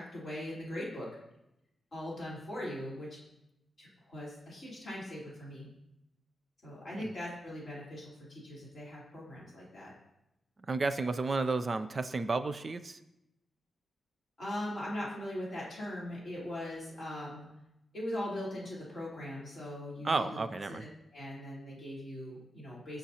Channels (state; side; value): normal; both; correlation 0.88